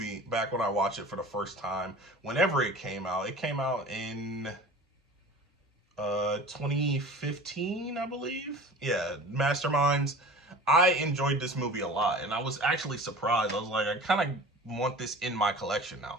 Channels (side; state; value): both; normal; correlation 0.39